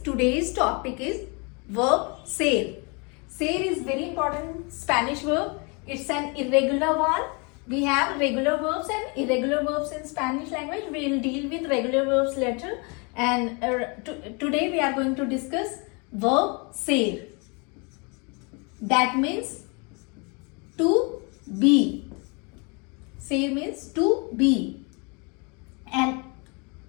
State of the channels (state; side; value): quieter; right; 32.0 dB